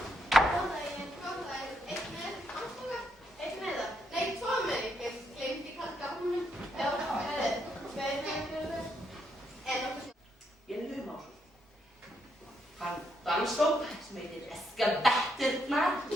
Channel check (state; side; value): normal; both; correlation 0.77